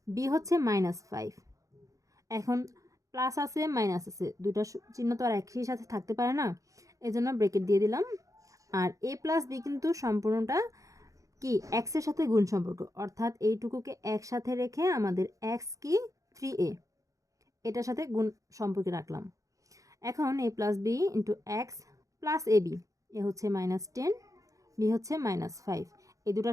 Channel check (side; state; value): left; late; 0.16 ms